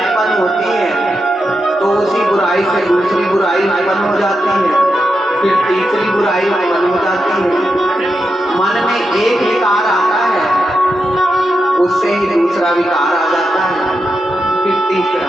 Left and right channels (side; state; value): both; normal; correlation 0.87